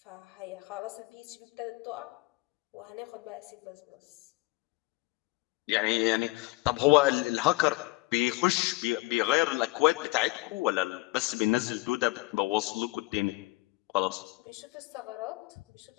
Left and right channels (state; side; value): quieter; right; 22.7 dB